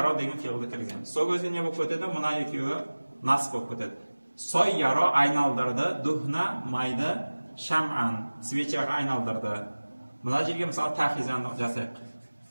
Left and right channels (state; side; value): inverted; both; correlation -1.00